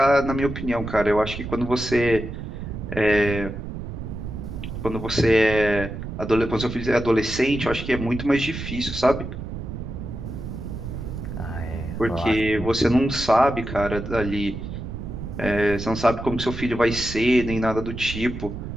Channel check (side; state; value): right; noise; rumble, 7 dB below the sound